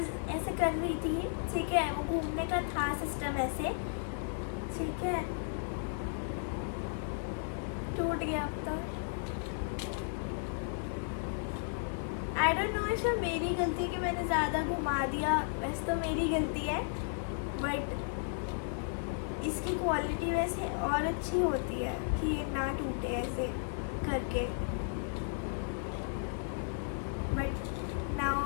ऐसे कर रही थी, ठीक है, वो घूमने का था सिस्टम ऐसे, ठीक है, टूट गया अब तो। आई डोंट नो इसमें मेरी गलती कि मैंने ज़्यादा घुमा दिया, वैसे तो मेरी गलती है, बट इसकी क्वालिटी वैसे और अच्छी होती है कि ये ना टूटे ऐसे करके, बट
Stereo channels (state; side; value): silent; right; 55 dB below the other